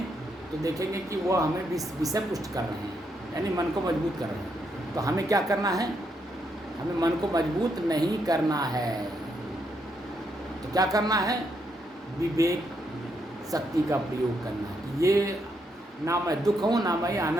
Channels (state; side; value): normal; both; correlation 0.78